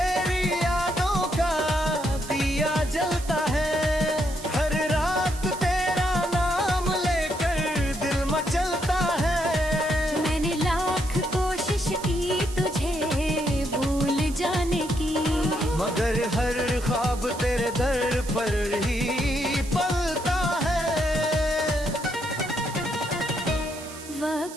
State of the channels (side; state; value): right; noise; hiss, 15 dB below the sound